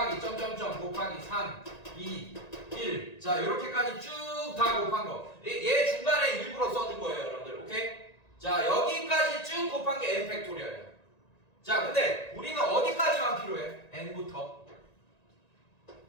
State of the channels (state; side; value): late; right; 1.9 ms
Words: 점점점 곱하기 3, 2, 1 자, 요렇게까지 쭉 다 곱한 거. 얘 중간에 일부러 써준 거예요, 여러분들. 오케이? 자, 여기까지 쭉 곱한 게 n 팩토리얼이에요. 자, 근데 우리는 어디까지만 필요해? n부터